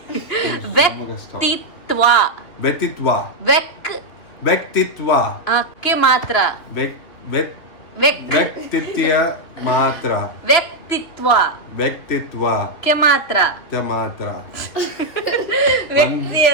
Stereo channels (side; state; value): right; late; 2.9 ms